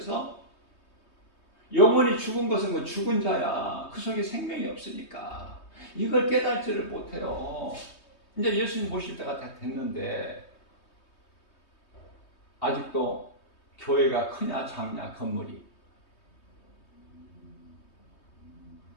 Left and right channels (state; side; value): late; right; 3.2 ms